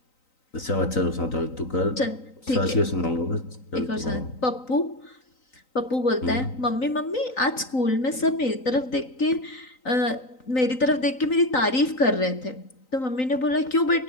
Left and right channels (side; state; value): right; late; 3.9 ms